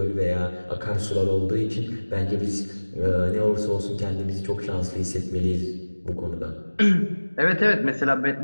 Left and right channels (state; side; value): inverted; both; correlation -1.00